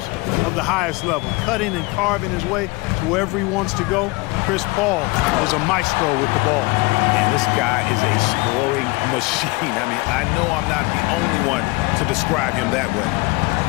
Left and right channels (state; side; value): quieter; right; 24.4 dB